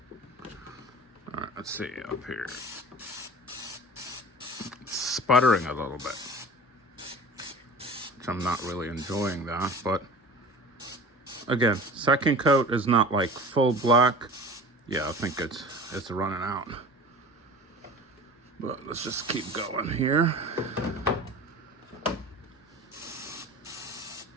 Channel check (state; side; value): normal; both; correlation 0.39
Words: All right, let's see up here. It's sputtering a little bit. which I'm not really enjoying that. But again, second coat is not like full black. Yeah, I think it's running out. But let's just keep going here.